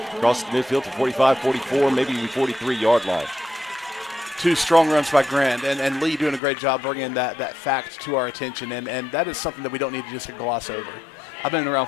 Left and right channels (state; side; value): drops out; right; at 6.4 s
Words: crosses the midfield to 45, 44, maybe even 43-yard line. 2 strong runs by Grant, and Lee doing a great job bringing that fact to our attention, and that is something that we don't need to just gloss over. I've been around